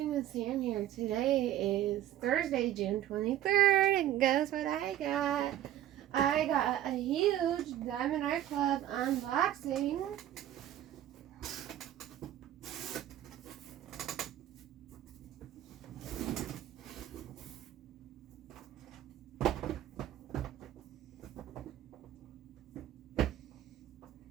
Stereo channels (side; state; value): left; quieter; 12.3 dB